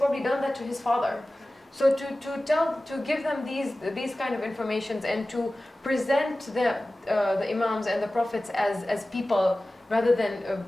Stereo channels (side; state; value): both; normal; correlation 0.97